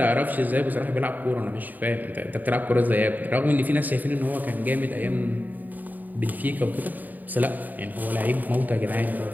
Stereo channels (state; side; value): late; left; 0.085 ms